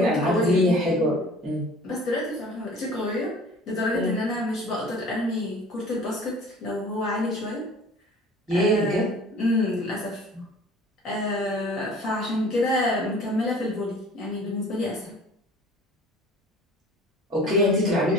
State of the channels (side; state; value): both; normal; correlation 0.47